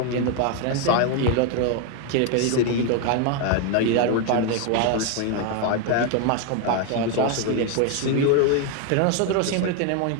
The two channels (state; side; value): different; both; correlation 0.01